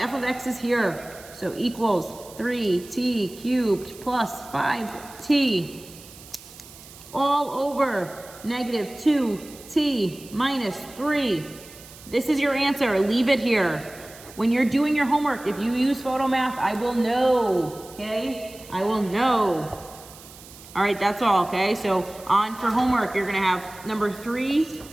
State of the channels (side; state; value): right; noise; hiss, 19 dB below the sound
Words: of x is here, so equals 3t cubed plus 5t all over -2t minus 3. This is your answer. Leave it here. When you're doing your homework, if you use PhotoMath, I will know, okay? I will know. All right, that's all, okay? So on for homework, you're gonna have number 3,